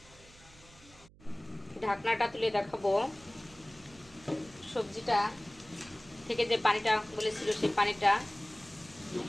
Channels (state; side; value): noise; right; hum, 24 dB below the sound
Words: ঢাকনাটা তুলে দেখাবো সবজিটা থেকে যে পানিটা বলেছিল সেই পানিটা